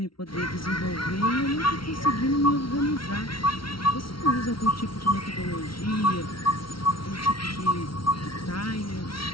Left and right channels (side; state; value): right; late; 0.74 ms